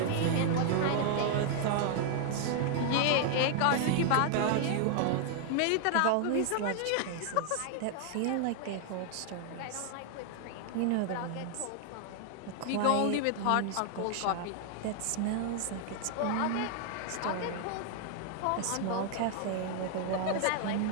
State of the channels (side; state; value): both; different; correlation 0.00